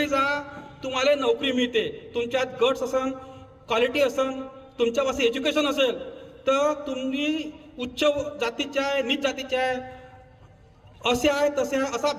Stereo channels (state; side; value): identical; both; correlation 1.00